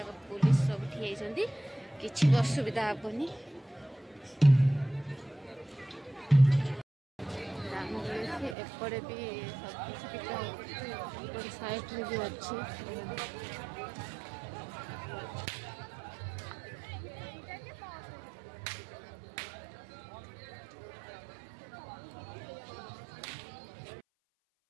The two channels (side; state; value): left; drops out; at 8.6 s